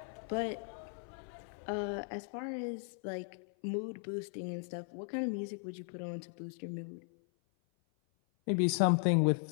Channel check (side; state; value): right; silent; 53 dB below the other